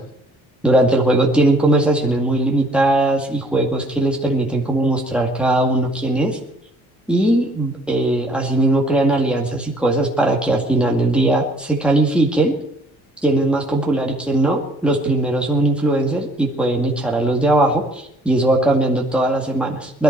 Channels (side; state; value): both; normal; correlation 0.59